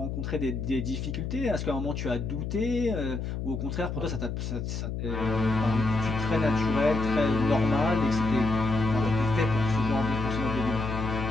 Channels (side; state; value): left; noise; hum, 4 dB below the sound